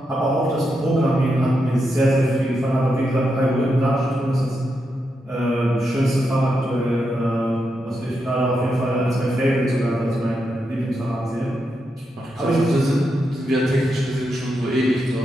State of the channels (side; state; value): both; normal; correlation 0.84